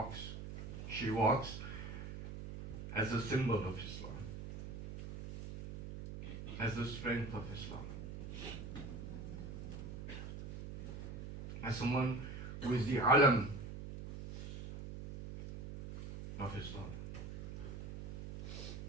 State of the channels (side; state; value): right; noise; hum, 8 dB below the sound